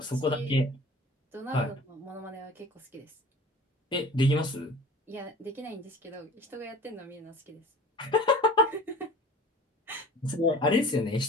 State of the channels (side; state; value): both; normal; correlation 0.43